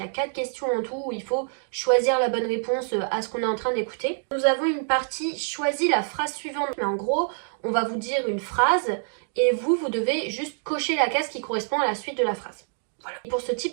y a 4 questions en tout où il faut choisir la bonne réponse à ce qu'on est en train d'écouter. Nous avons une partie « Choisis la phrase suivante ». Mais en gros, on va vous dire une phrase et vous devez juste cocher la case qui correspond à la suite de la phrase. Voilà. Pour ce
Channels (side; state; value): left; silent; digital silence